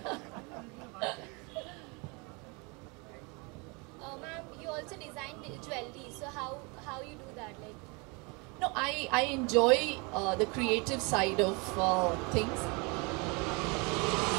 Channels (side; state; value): left; quieter; 30.0 dB